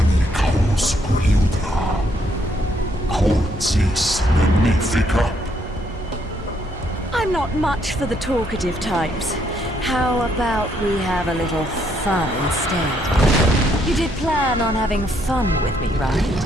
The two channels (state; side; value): normal; both; correlation 0.72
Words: magnifica. I'm not much for the talkative types. How about we have a little fun instead? You did plan on having fun with me, right?